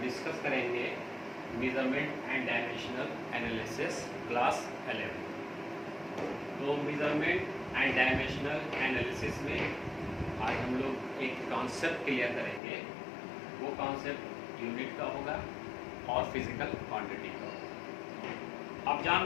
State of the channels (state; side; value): drops out; right; at 12.6 s